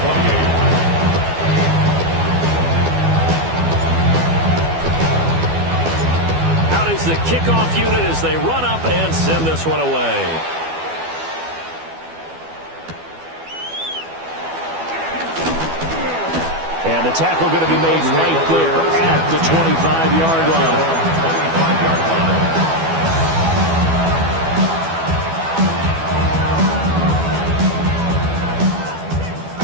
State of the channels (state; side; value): late; left; 12 ms